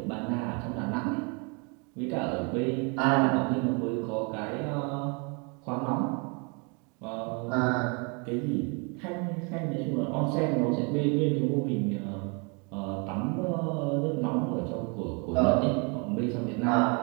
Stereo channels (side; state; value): left; quieter; 33.7 dB